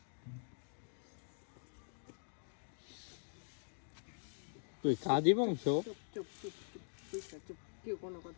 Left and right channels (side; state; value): right; silent; digital silence